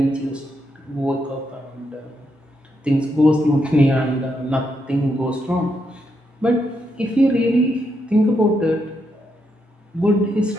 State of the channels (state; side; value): normal; both; correlation 0.80